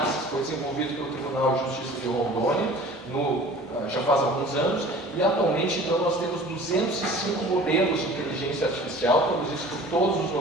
que foi desenvolvido pelo Tribunal de Justiça de Rondônia já faz alguns anos, e atualmente então nós temos 205 modelos de inteligência artificial produzidos por todos os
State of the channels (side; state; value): both; normal; correlation 0.44